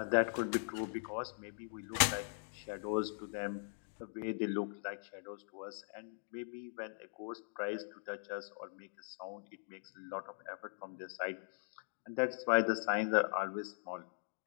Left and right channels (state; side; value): silent; right; digital silence